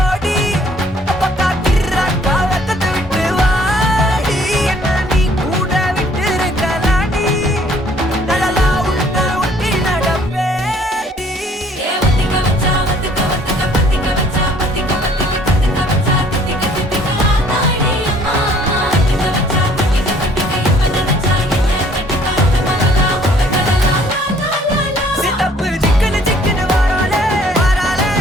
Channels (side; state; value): both; normal; correlation 0.59